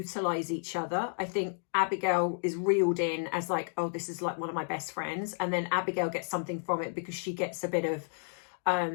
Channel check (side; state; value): right; silent; digital silence